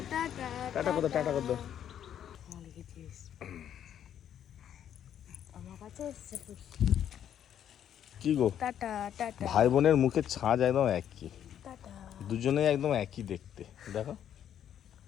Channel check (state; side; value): quieter; right; 9.8 dB